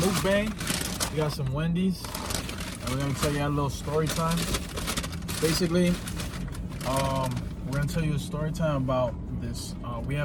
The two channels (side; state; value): both; identical; correlation 1.00